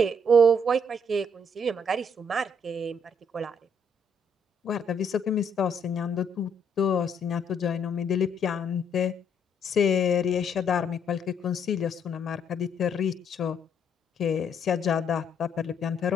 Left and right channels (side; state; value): both; normal; correlation 0.69